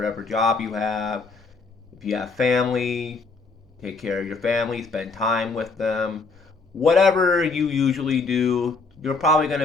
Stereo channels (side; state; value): right; quieter; 4.1 dB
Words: job you have. If you have family, take care of your family, spend time with them. Whatever you usually do, you're probably going